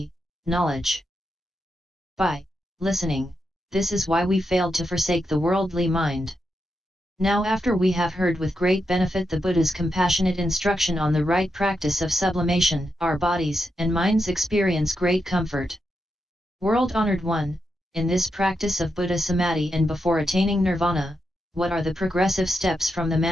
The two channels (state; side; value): normal; both; correlation 0.85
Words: knowledge. By listening, this is why we failed to forsake the worldly mind. Now after we have heard with great benefit the Buddha's compassionate instruction on the right practice of sublimation, our bodies and minds experience great comfort. World-honored one, in this practice of Buddha Samadhi and before attaining Nirvana, what are the progressive steps from the